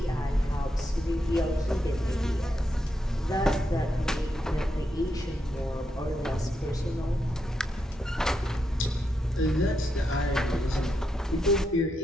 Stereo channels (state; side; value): normal; both; correlation 0.83